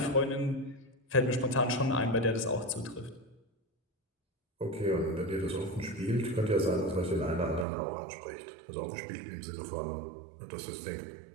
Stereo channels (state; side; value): drops out; left; at 7.7 s